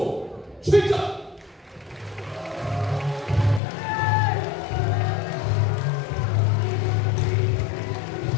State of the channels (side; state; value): right; drops out; at 3.6 s